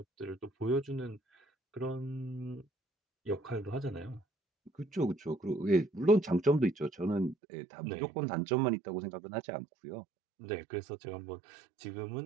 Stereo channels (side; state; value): left; drops out; at 7.4 s